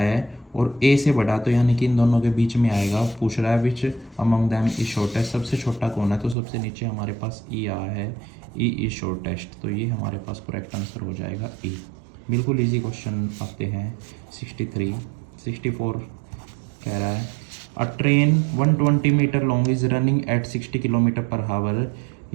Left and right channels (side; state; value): left; drops out; at 6.4 s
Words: और A से बड़ा, तो यानी कि इन दोनों के बीच में आएगा। पूछ रहा है which among them is shortest, सबसे छोटा कौन है। तो सबसे नीचे हमारे पास E आया है, E इज शॉर्टेस्ट। तो ये हमारे पास करेक्ट आंसर हो जाएगा E। बिल्कुल इजी क्वेश्चन आते हैं। 63 64 कह रहा है, a train 120 metre long is running at 60 kilometre per hour.